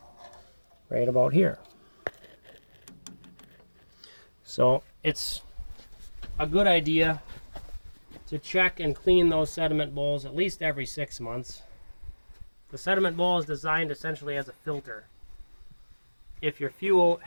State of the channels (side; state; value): both; inverted; correlation -1.00